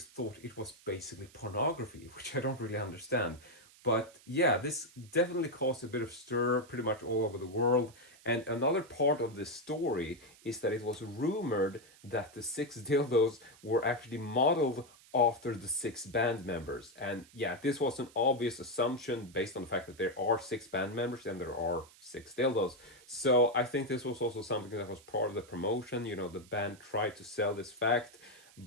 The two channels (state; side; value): noise; right; hiss, 24 dB below the sound